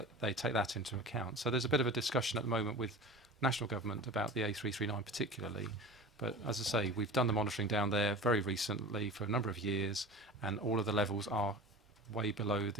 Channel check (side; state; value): both; normal; correlation 0.35